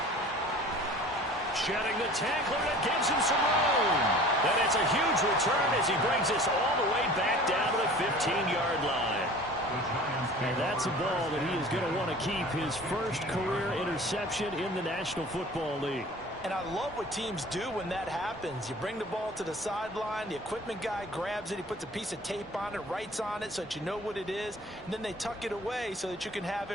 Shedding the tackler that gives him some room. And it's a huge return as he brings us all the way back down to the 15-yard line. And that's a ball that he is going to want to keep, his first career interception in the National Football League. And I love what teams do when that happens. You bring the ball to the sideline, the equipment guy grabs it, he puts a piece of tape on it, writes on it so that you know what it is, and then they tuck it away so that you can have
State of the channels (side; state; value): both; normal; correlation 0.44